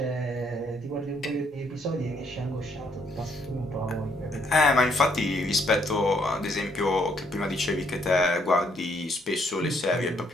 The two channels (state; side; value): normal; both; correlation 0.69